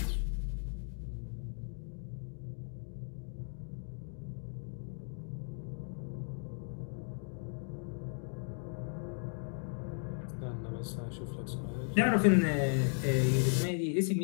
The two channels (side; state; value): right; silent; 54 dB below the other